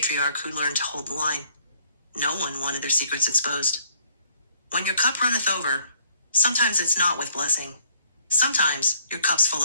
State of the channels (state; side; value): inverted; both; correlation -0.64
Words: who learned to hold the line. No one wanted their secrets exposed. When your cup runneth over, sometimes it's not with blessing. Sometimes your cup's full